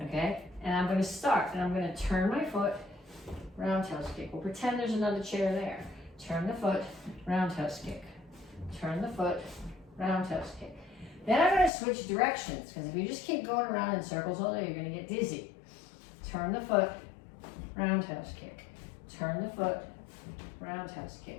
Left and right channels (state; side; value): drops out; right; at 11.7 s